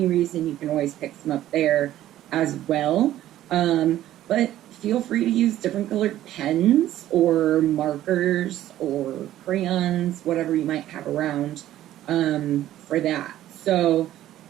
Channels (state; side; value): quieter; left; 13.2 dB